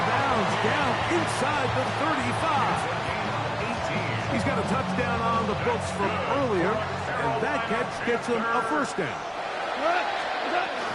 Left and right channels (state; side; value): identical; both; correlation 1.00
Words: bounds down inside the 35. He's got a touchdown on the books from earlier, and that catch gets him a first down.